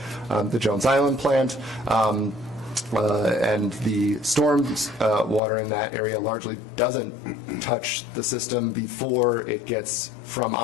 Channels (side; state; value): right; drops out; at 5.4 s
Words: Jones Island plant. And the storm water in that area largely doesn't touch the system before it gets from